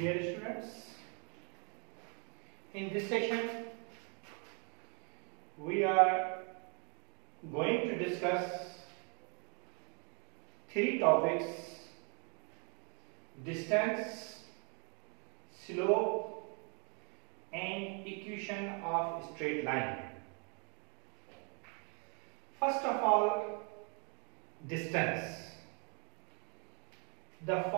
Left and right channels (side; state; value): left; quieter; 36.5 dB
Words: students, in this session we are going to discuss three topics: distance, slope and equation of straight line. First of all, distance. The